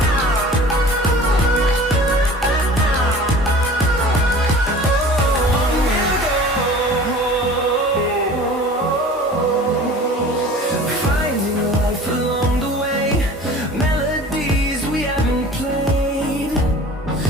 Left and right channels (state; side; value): normal; both; correlation 0.43